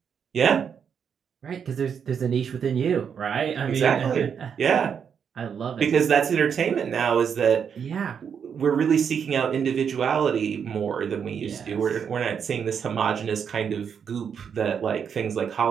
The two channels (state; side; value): quieter; left; 7.3 dB